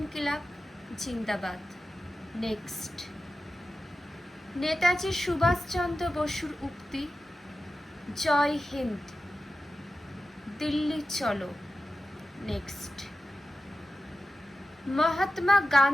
জিন্দাবাদ। নেক্সট, নেতাজি সুভাষচন্দ্র বসুর উক্তি জয় হিন্দ, দিল্লি চলো। নেক্সট, মহাত্মা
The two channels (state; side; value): normal; both; correlation 0.92